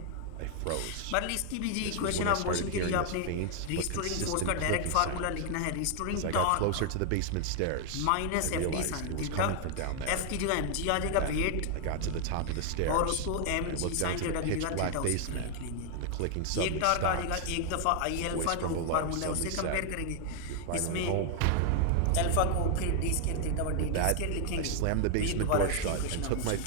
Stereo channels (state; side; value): different; both; correlation 0.00